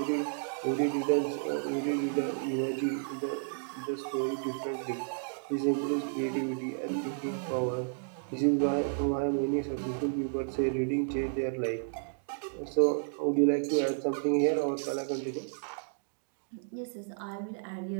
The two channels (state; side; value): silent; left; digital silence